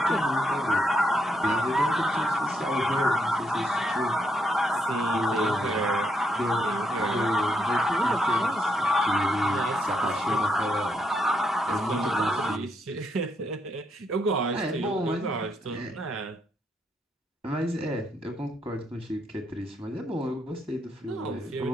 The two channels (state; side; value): normal; both; correlation 0.77